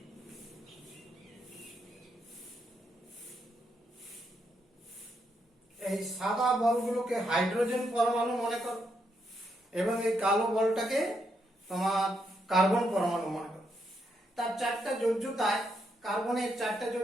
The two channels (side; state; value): both; normal; correlation 0.79